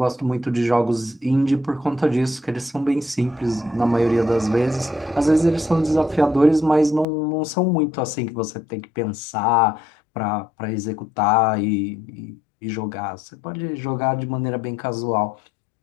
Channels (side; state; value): right; drops out; at 7.1 s